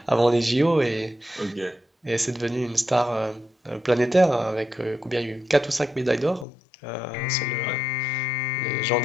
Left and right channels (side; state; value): right; drops out; at 6.5 s